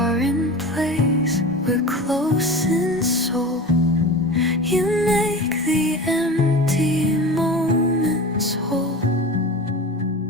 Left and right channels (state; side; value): normal; both; correlation 0.31